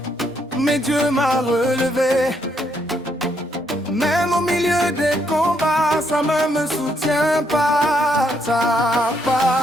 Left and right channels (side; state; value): both; normal; correlation 0.74